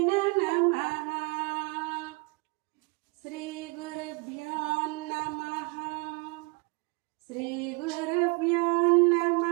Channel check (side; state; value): left; quieter; 29.0 dB